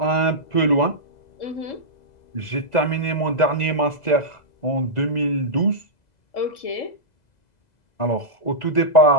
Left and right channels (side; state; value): right; late; 2.0 ms